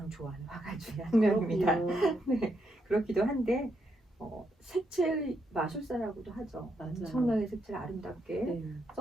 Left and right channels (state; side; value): normal; both; correlation 0.80